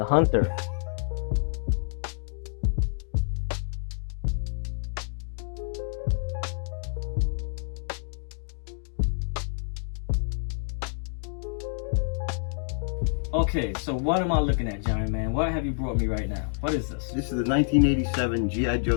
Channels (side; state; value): right; silent; digital silence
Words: hunter. Okay, so what am I looking at, Giant Man? What have you brought me right now? What is this? This is the 1987 G.I.